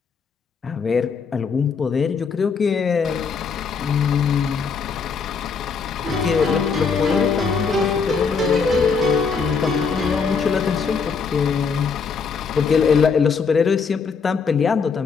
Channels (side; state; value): right; quieter; 5.5 dB